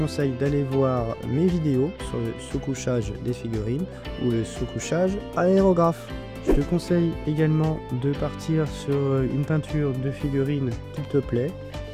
d'aller voir mes vidéos sur le sous-couchage des figurines ou le sous-couchage aérographe. Je te conseille également de partir sur une peinture de figurine qui te plaît.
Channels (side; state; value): both; identical; correlation 1.00